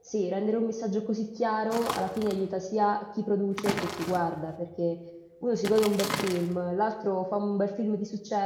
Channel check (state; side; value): identical; both; correlation 1.00